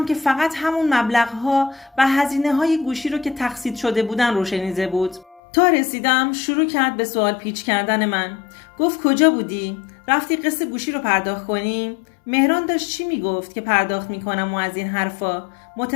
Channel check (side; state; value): right; drops out; at 5.4 s